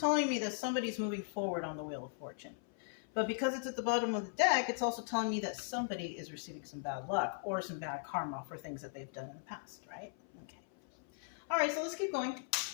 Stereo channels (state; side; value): silent; right; 52 dB below the other